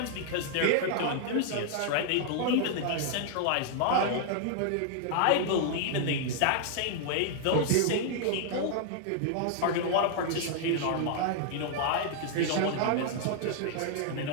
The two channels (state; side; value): different; both; correlation 0.00